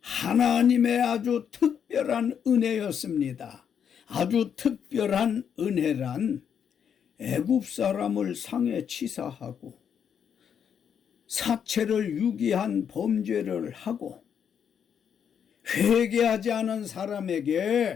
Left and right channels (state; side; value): quieter; right; 7.9 dB